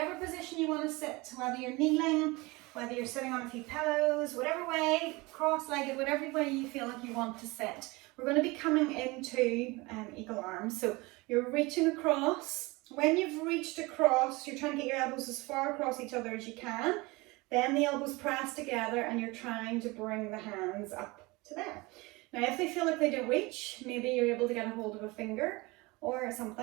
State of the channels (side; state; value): left; quieter; 23.8 dB